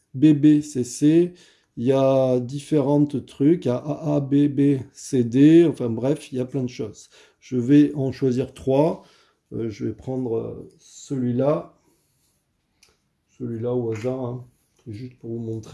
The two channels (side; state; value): both; identical; correlation 1.00